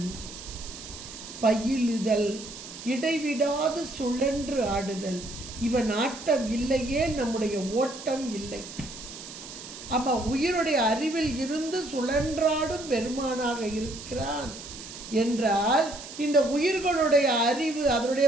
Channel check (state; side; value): noise; right; hiss, 13 dB below the sound